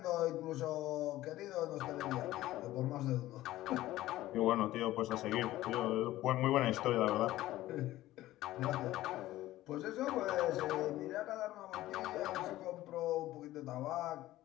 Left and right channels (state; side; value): quieter; right; 15.6 dB